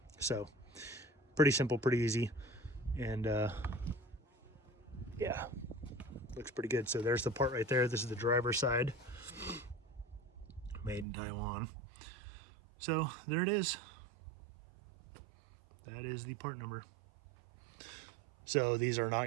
So pretty simple, pretty easy, and yeah, looks pretty good. So there's the part right there. This is the driver's side, made in Taiwan. So there it is. That is the part number. So these are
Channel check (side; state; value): left; drops out; at 11.1 s